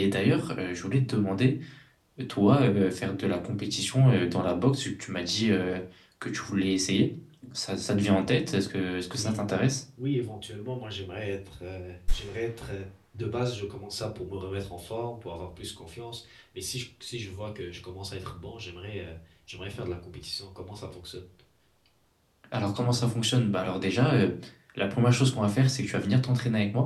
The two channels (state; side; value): identical; both; correlation 1.00